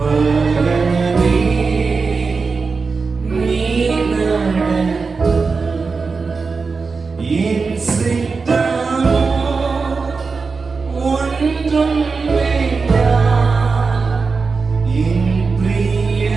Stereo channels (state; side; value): quieter; left; 4.6 dB